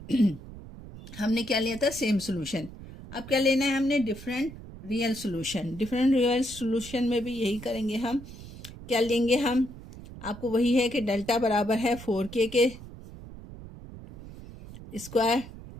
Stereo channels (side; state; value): right; noise; rumble, 15 dB below the sound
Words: हमने क्या लिया था? Same solution. अब क्या लेना है हमने? Different real solution. Different real solution में भी यही करेंगे हम। क्या लेंगे हम? आपको वही है कि डेल्टा बराबर है 4k के स्क्वायर,